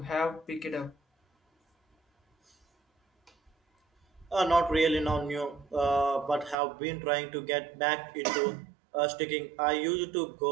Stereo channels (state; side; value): drops out; left; at 6.6 s